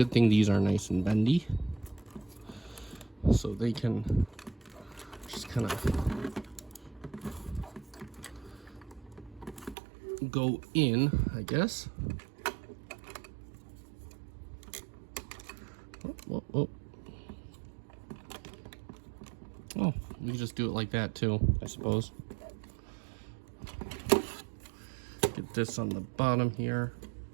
thing these are nice and bendy, so they can just kind of go in, I guess. Oh, you just do it like that too, I suppose. Get this on the bottom here.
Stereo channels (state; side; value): drops out; left; at 9.8 s